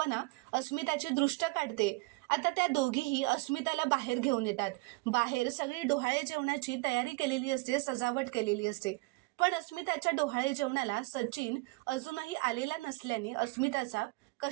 अस्मिताची दृष्ट काढते. आता त्या दोघीही अस्मिताला बाहेर घेऊन येतात. बाहेर सगळी डोहाळे जेवणाची तयारी केलेली असते, सजावट केलेली असते. पण अस्मिताच्या डोहाळे जेवणाला सचिन अजूनही आलेला नसल्याने अस्मिताचा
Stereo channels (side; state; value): left; quieter; 25.2 dB